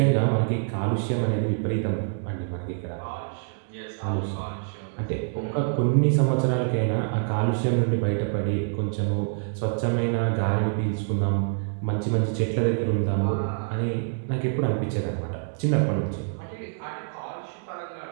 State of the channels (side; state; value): left; silent; digital silence